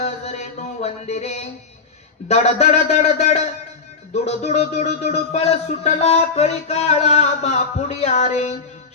वंदिरे दड दड दड दड दुड दुड दुड दुड पळ सुटला कळी काळा बापुडिया रे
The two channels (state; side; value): quieter; right; 4.9 dB